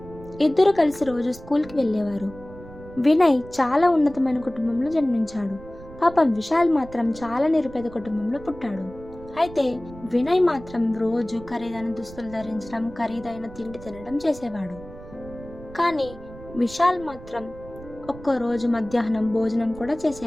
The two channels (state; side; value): noise; right; rumble, 17 dB below the sound